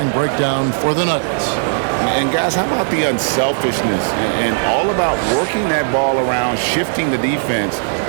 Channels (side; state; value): left; silent; digital silence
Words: breakdown for the Nuggets. And guys, how about the unselfishness and all about working that ball around, shifting the defense,